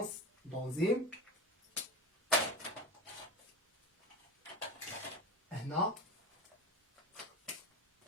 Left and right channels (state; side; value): normal; both; correlation 0.26